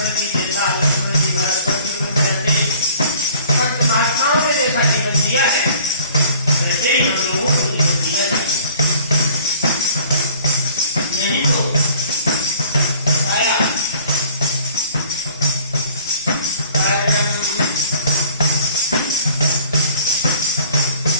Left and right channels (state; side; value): inverted; both; correlation -0.53